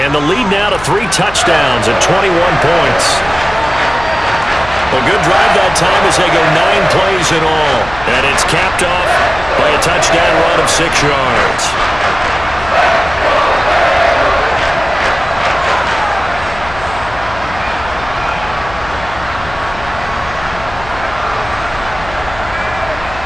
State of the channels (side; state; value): left; noise; hum, 15 dB below the sound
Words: the lead now to 3 touchdowns and 21 points. A good drive that time as they go 9 plays in all. And it's capped off by a touchdown run of 6 yards.